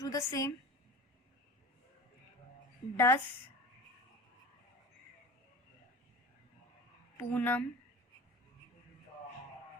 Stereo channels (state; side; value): normal; both; correlation 0.35